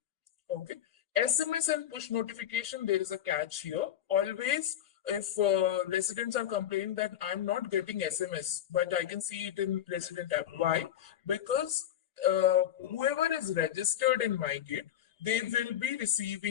Okay. SMS and push notification, there is a catch here. Always, if residents are complaining that I'm not getting SMS, but I can see it in resident app. Why? Because whoever is registered in Mygate, they will be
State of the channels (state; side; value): quieter; right; 10.8 dB